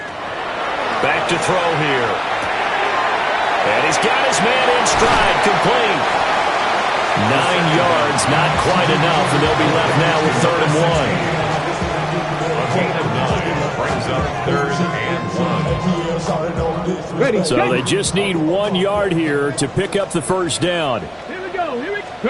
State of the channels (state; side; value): identical; both; correlation 1.00